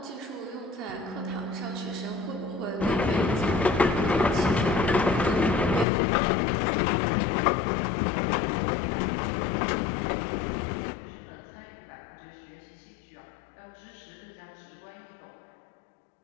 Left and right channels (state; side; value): drops out; right; at 5.9 s